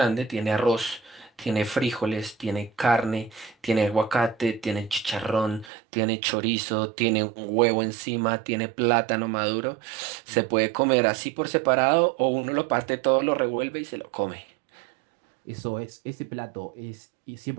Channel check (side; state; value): left; drops out; at 5.7 s